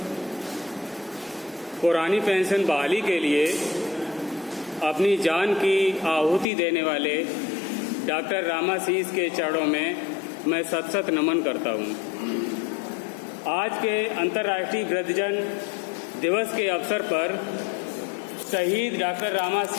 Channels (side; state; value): right; drops out; at 6.5 s